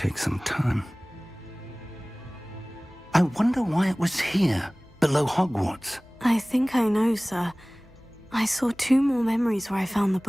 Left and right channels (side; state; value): left; noise; hum, 28 dB below the sound